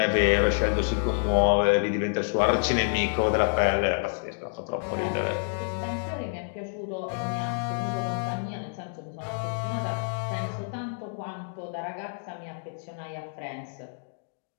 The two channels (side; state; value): right; silent; 59 dB below the other